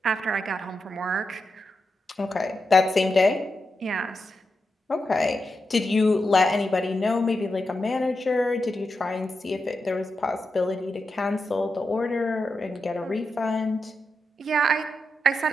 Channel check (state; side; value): normal; both; correlation 0.87